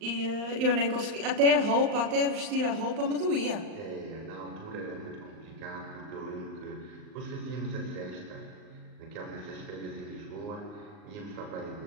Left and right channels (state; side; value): late; left; 39 ms